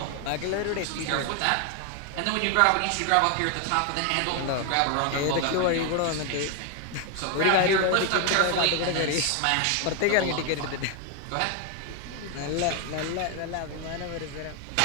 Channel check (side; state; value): both; different; correlation 0.01